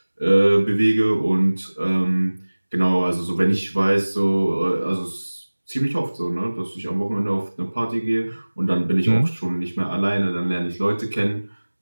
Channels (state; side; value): inverted; both; correlation -1.00